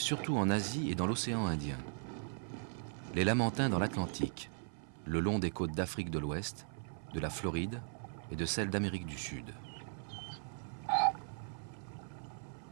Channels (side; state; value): left; silent; 52 dB below the other